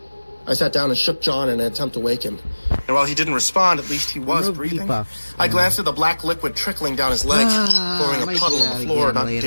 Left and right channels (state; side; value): inverted; both; correlation -1.00